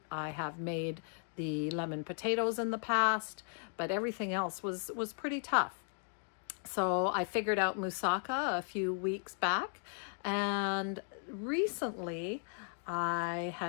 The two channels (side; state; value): right; silent; 54 dB below the other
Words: have made the lemon potatoes in the past, but everything else was pretty tough. So I figured out moussaka a few weeks back, and recently I